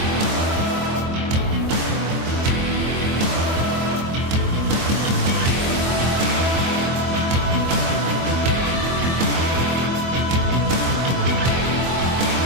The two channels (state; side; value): late; left; 24 ms